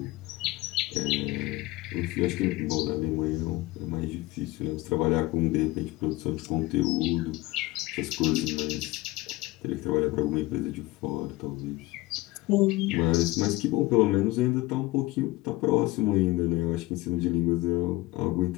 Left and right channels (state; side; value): quieter; right; 19.4 dB